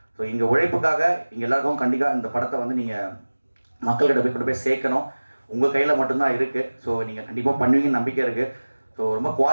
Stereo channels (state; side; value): inverted; both; correlation -1.00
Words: ஸோ இங்கே உழைப்புக்காக இங்கே எல்லாருக்கும் கண்டிப்பாக இந்த படத்தை வந்து நீங்கள் மக்கள்கிட்ட போய் சேர்க்கணும். உங்கள் கையில் மட்டும்தான் இருக்குது. ஸோ நீங்கள் கண்டிப்பாக பண்ணுவீங்கன்னு நம்பிக்கை இருக்குது. ஸோ ரொம்ப